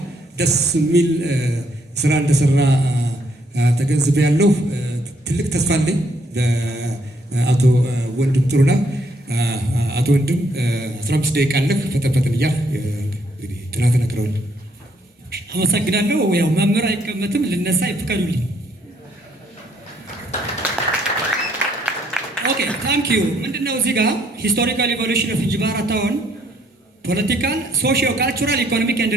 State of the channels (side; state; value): both; normal; correlation 0.69